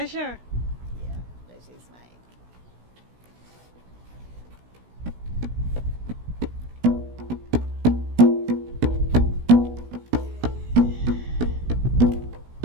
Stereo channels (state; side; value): late; left; 16 ms